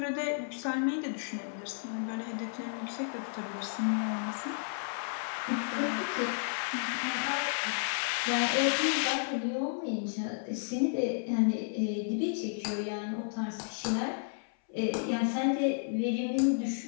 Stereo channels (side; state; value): right; silent; 56 dB below the other